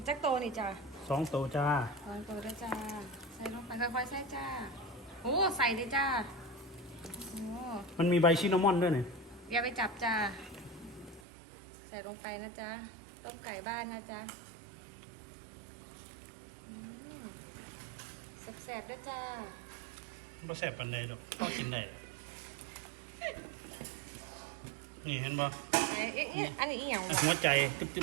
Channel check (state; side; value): drops out; left; at 11.2 s